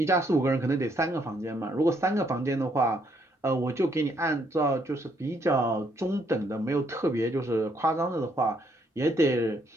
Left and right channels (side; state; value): both; normal; correlation 0.71